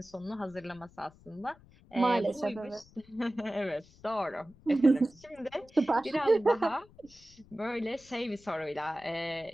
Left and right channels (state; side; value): noise; left; rumble, 25 dB below the sound